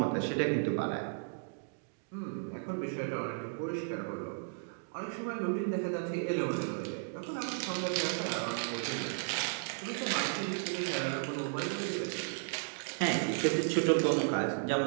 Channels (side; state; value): left; silent; digital silence